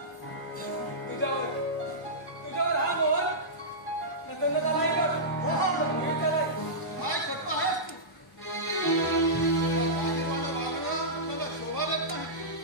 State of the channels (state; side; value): normal; both; correlation -0.15